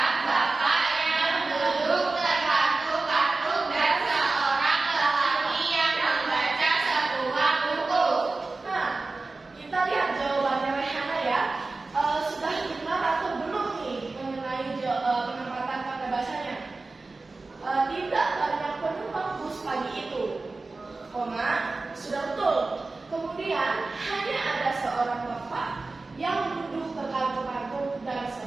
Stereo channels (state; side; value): quieter; left; 3.5 dB